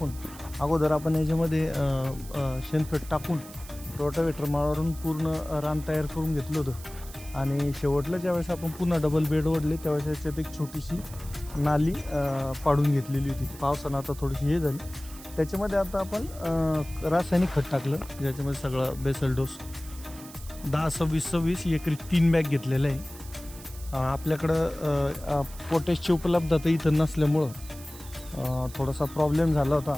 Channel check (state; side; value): noise; right; hiss, 17 dB below the sound